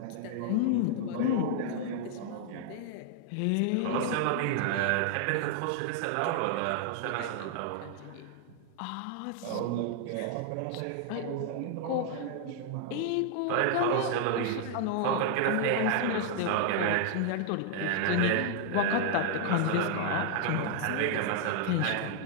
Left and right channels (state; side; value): different; both; correlation 0.00